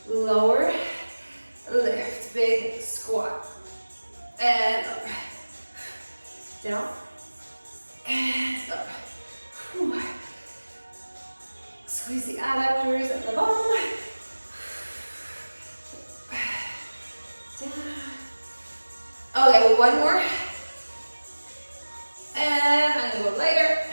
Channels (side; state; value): both; inverted; correlation -1.00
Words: lower, lift, big squat, and up, down, and up. Whew. Squeeze the adductors at the bottom. Down. Okay, one more. And I'm gonna go lighter